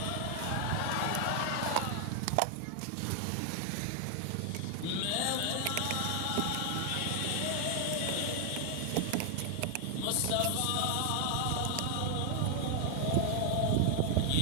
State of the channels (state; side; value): different; both; correlation 0.00